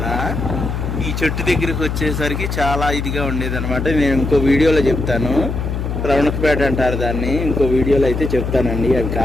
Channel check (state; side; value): noise; left; hum, 3 dB below the sound